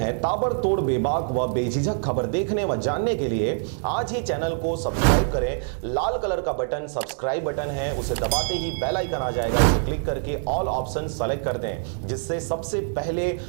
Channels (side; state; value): left; silent; 59 dB below the other